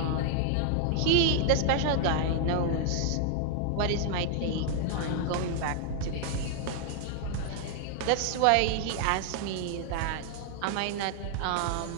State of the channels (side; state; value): both; different; correlation 0.00